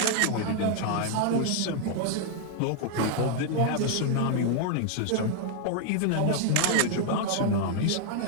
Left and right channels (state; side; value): different; both; correlation 0.00